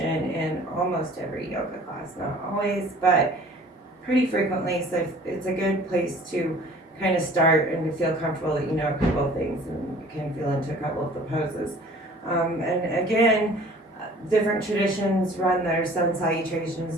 in almost every yoga class, not always, but pretty frequently. So it's a good place to kind of start and to feel comfortable that you know a couple of things and you can feel into a couple of the poses. And again, different traditions run their sun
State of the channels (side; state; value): both; normal; correlation 0.49